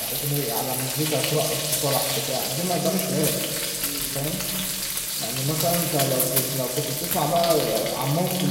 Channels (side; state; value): both; identical; correlation 1.00